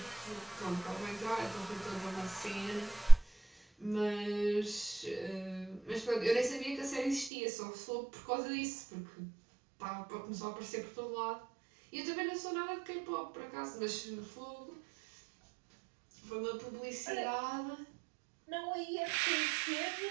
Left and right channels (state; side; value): drops out; left; at 7.3 s